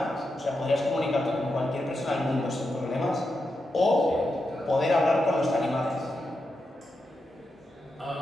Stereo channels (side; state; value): both; normal; correlation 0.87